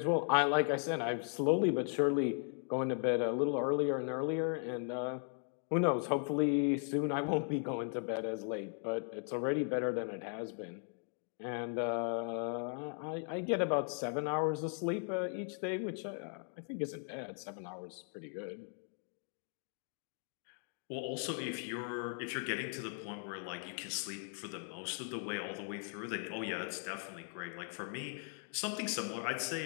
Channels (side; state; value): right; silent; 53 dB below the other